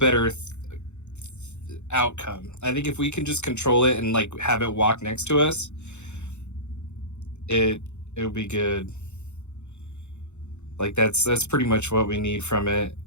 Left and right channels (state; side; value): late; right; 0.83 ms